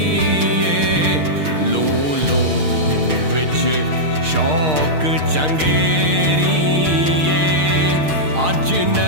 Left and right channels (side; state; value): left; late; 6.5 ms